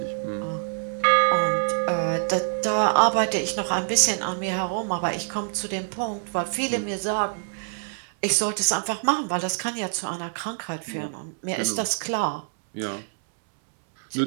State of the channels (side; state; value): left; silent; 61 dB below the other